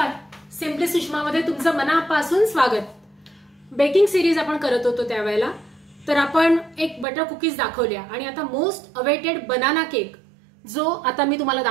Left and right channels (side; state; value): left; drops out; at 7.1 s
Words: Simply सुषमामध्ये तुमचं मनापासून स्वागत. बेकिंग सिरीज आपण करत होतो त्यावेळेला तर आपण एक बटर कुकीज दाखवल्या आणि आता मोस्ट अवेटेड बनाना केक जो आता मी तुम्हाला